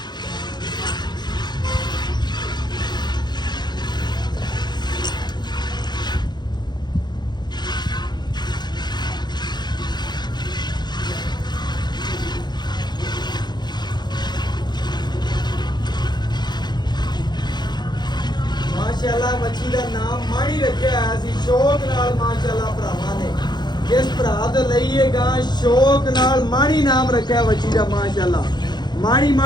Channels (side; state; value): right; late; 0.21 ms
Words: ਮਾਸ਼ਾਅੱਲਾ ਬੱਚੀ ਦਾ ਨਾਮ ਮਾਣੀ ਰੱਖਿਆ ਹੋਇਆ ਸੀ ਸ਼ੌਕ ਨਾਲ ਮਾਸ਼ਾਅੱਲਾ ਭਰਾਵਾਂ ਨੇ। ਜਿਸ ਭਰਾ ਤੋਂ ਲਈਏਗਾ ਸ਼ੌਕ ਨਾਲ ਮਾਣੀ ਨਾਮ ਰੱਖਿਆ ਬੱਚੀ ਦਾ ਮਾਸ਼ਾਅੱਲਾ।